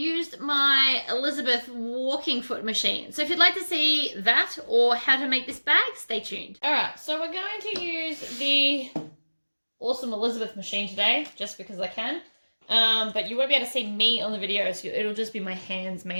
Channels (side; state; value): both; inverted; correlation -1.00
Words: my Elizabeth walking foot machine. So if you'd like to see that or how to make this bag, stay tuned. Alright, so we're going to use the awesome Elizabeth machine today, just because I can. But you won't be able to see me on the video, so it'll just be my hands